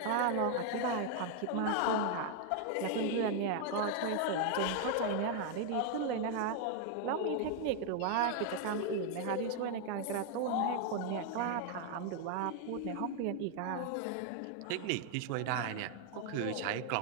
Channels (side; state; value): both; different; correlation 0.00